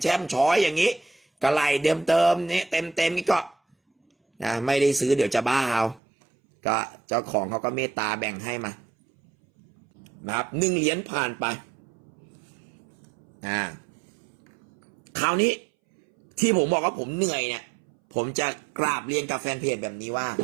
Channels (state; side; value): drops out; left; at 6.0 s